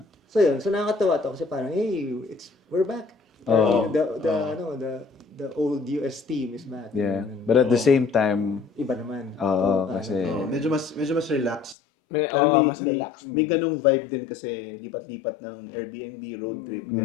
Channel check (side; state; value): right; drops out; at 11.8 s